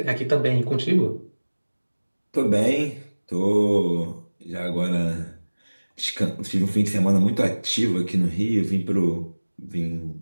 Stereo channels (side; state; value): both; inverted; correlation -1.00